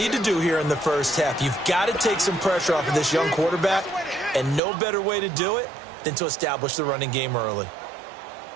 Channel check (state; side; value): drops out; left; at 4.6 s